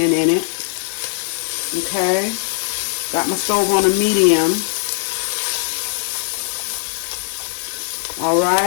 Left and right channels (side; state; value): right; silent; 62 dB below the other